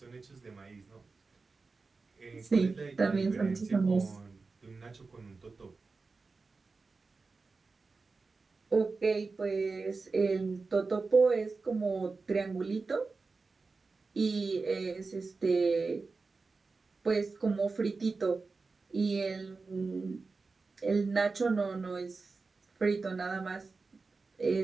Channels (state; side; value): quieter; left; 4.1 dB